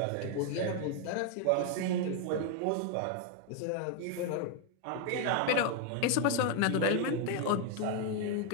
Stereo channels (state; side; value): different; both; correlation 0.01